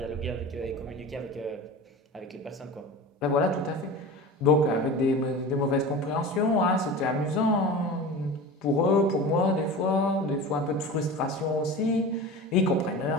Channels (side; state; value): both; normal; correlation 0.33